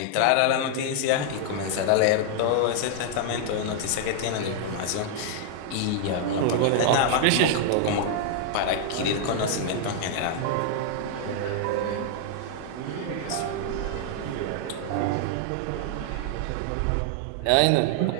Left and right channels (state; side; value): different; both; correlation 0.00